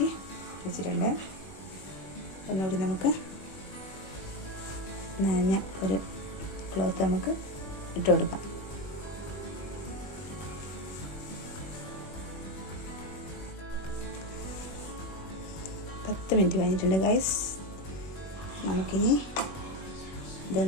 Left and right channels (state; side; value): late; right; 21 ms